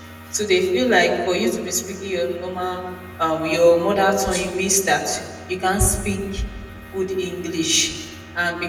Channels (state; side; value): identical; both; correlation 1.00